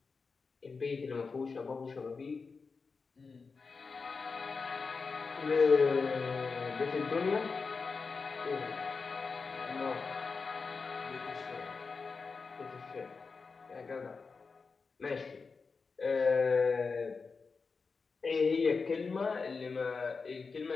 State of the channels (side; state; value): right; quieter; 4.7 dB